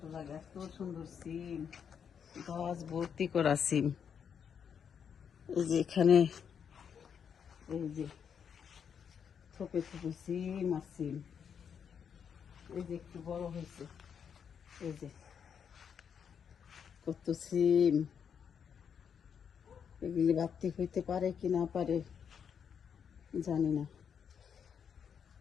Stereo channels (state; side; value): quieter; right; 7.4 dB